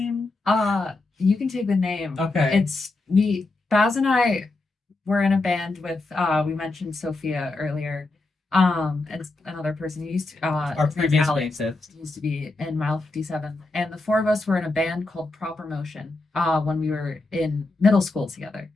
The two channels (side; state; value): right; quieter; 3.2 dB